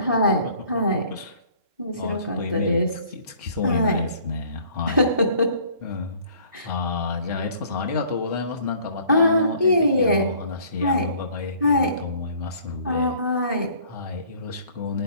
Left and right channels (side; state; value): both; inverted; correlation -0.56